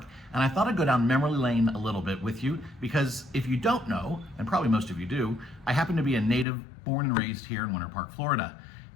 and I thought I'd go down memory lane a little bit with you because if you don't know, and probably most of you do, I happen to be a native born and raised here in Winter Park, Florida,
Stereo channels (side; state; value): right; drops out; at 6.5 s